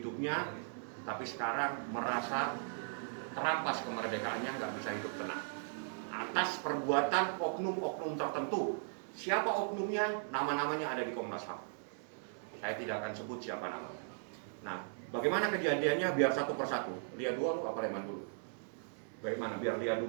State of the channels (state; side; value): silent; left; digital silence